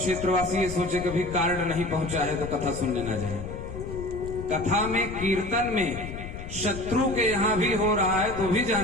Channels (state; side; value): noise; left; rumble, 9 dB below the sound